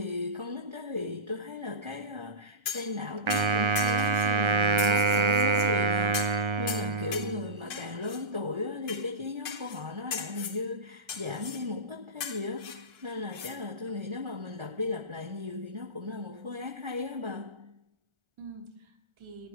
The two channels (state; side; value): late; left; 1.3 ms